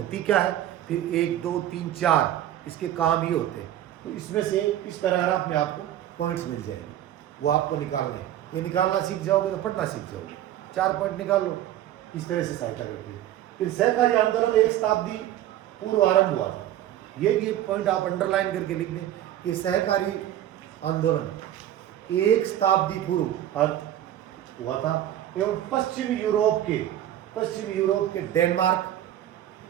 क्या है, फिर 1 2 3 4 इसके काम ही होते हैं। तो इसमें से इस पैराग्राफ में आपको पॉइंट्स मिल जाएंगे, वो आपको निकालने हैं। ये निकालना सीख जाओगे तो पढ़ना सीख जाओगे। 4 पॉइंट निकाल लो, इस तरह से सहायता करती है। फिर सहकारी आंदोलन 1 शताब्दी पूर्व आरंभ हुआ था। ये भी एक पॉइंट आप अंडरलाइन करके लिख दें कि सहकारी आंदोलन 1 शताब्दी पूर्व हुआ था, एवं पश्चिमी यूरोप के डेनमार्क,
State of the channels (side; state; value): left; quieter; 12.4 dB